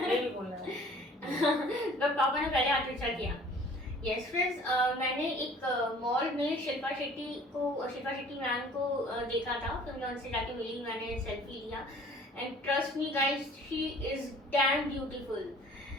भी बोल रहा है. बट पापा ने पहले आंसर किया. यस फ्रेंड्स, मैंने एक मॉल में शिल्पा शेट्टी मैम को देखा था. फिर मैं उनसे जाके मिली, मैंने सेल्फी लिया. And trust me guys, she is damn beautiful.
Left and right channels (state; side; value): normal; both; correlation 0.51